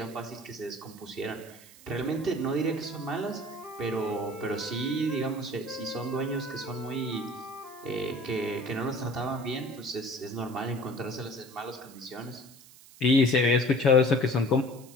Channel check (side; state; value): right; noise; hiss, 21 dB below the sound